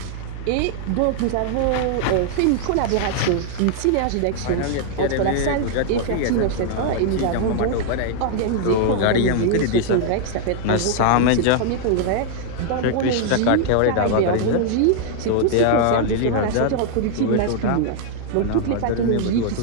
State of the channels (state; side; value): different; both; correlation 0.00